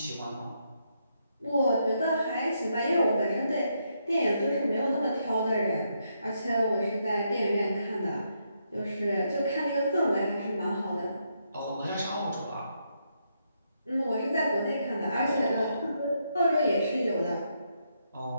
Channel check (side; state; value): both; inverted; correlation -0.79